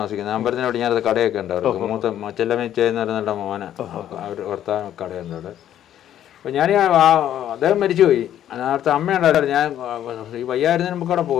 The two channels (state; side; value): quieter; right; 11.1 dB